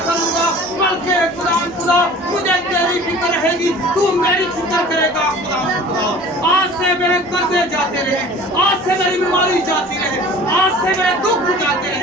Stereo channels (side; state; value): both; normal; correlation 0.44